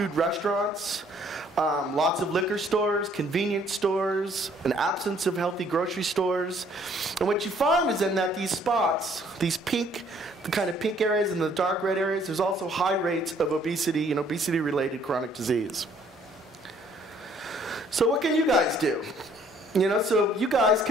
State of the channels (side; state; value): both; normal; correlation 0.62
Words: restaurants, lots of liquor stores, convenience stores, an absence of healthy grocery stores. And what you find is in that these spots, the kind of pink areas and the dark red areas, there's also high rates of obesity and obesity-related chronic disease. So what can you guys do? So you guys